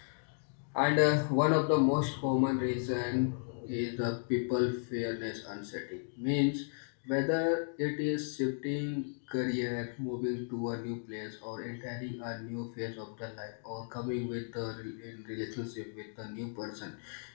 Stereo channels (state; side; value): silent; right; digital silence